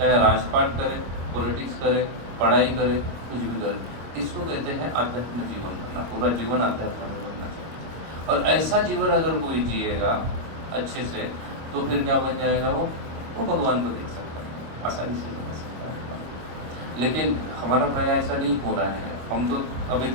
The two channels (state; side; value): late; left; 25 ms